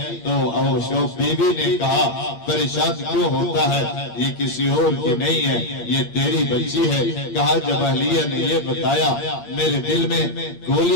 تو بیوی نے کہا پریشان کیوں ہوتا ہے؟ یہ کسی اور کی نہیں ہے، یہ تیری بچی ہے۔ کہا جب اہلیہ نے یہ بتایا میرے دل میں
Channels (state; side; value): late; right; 8.7 ms